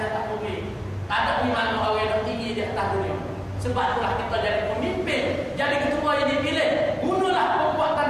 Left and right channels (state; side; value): identical; both; correlation 1.00